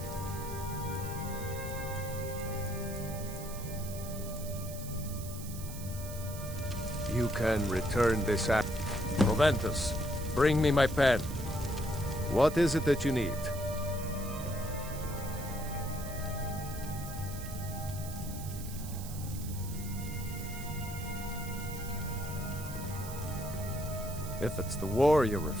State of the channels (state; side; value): noise; right; hiss, 12 dB below the sound